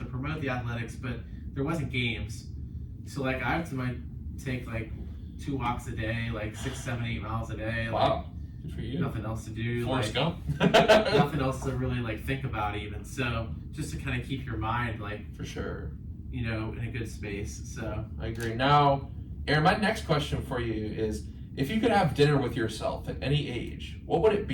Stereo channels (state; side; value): identical; both; correlation 1.00